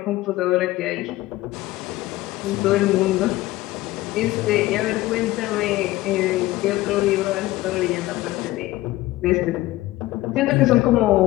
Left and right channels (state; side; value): quieter; right; 17.5 dB